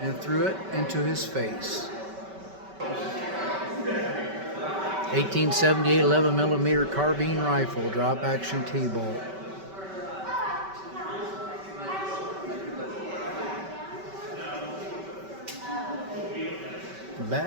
and threw it into his face. 1878 11mm carbine rifle, drop action T-bolt.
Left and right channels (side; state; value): left; late; 5.2 ms